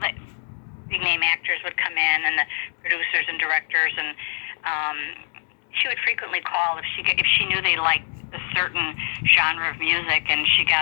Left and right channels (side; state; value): right; silent; digital silence